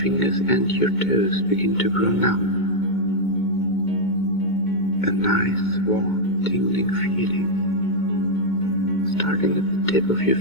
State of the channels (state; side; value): late; right; 2.2 ms